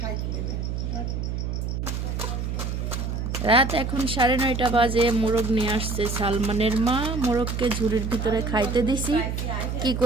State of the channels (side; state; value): right; noise; hum, 3 dB below the sound